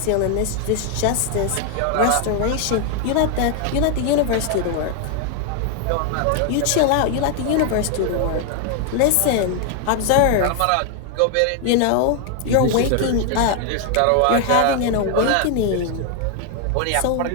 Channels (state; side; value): different; both; correlation 0.00